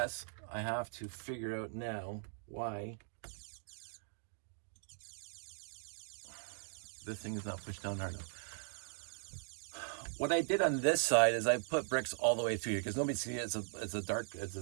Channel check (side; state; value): left; silent; digital silence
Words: I have to figure out now why this thing is not pushed down hard enough. What I did on this side is I put bricks all the way through here because nobody sees it. It's